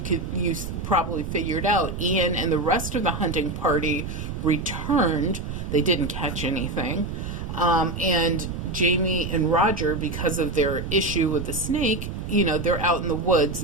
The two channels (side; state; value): right; noise; rumble, 6 dB below the sound